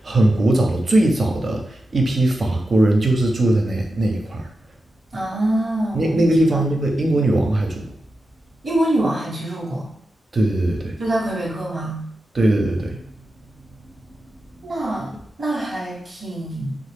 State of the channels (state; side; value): normal; both; correlation 0.90